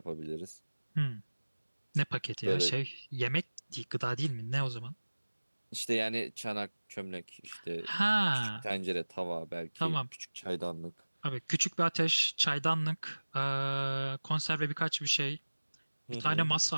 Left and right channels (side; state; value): both; inverted; correlation -1.00